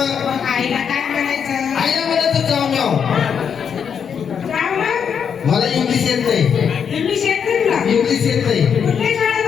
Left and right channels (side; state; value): right; quieter; 7.3 dB